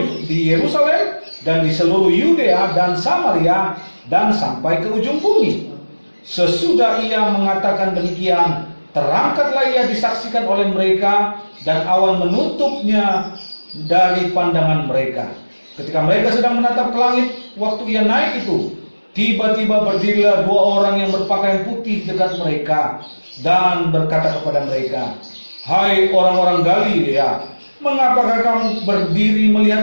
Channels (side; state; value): both; inverted; correlation -1.00